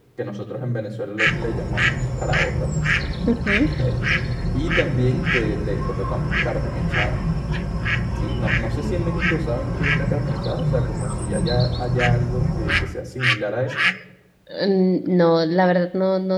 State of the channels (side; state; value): both; identical; correlation 1.00